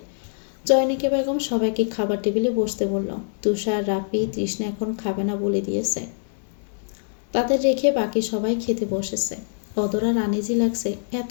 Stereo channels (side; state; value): right; silent; digital silence